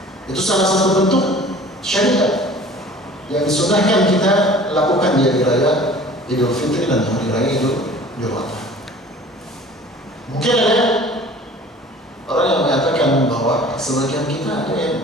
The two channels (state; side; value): normal; both; correlation 0.46